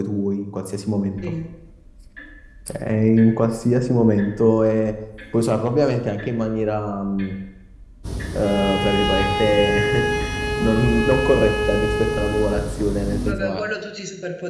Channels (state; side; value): identical; both; correlation 1.00